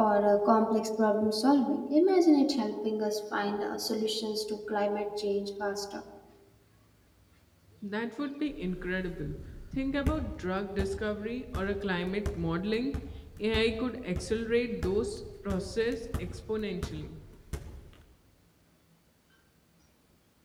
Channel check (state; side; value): identical; both; correlation 1.00